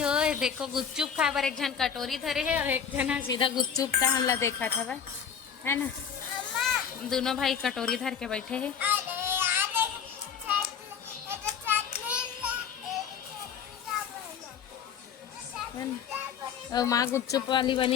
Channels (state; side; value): quieter; right; 7.5 dB